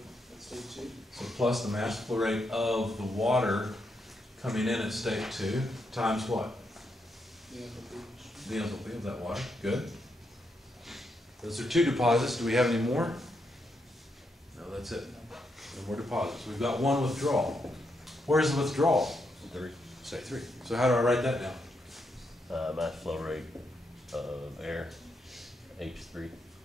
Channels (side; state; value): both; normal; correlation 0.81